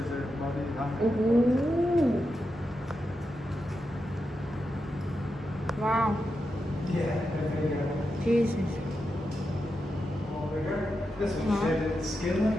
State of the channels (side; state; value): both; normal; correlation 0.87